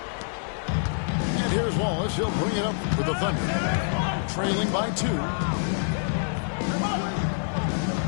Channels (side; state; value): right; silent; 61 dB below the other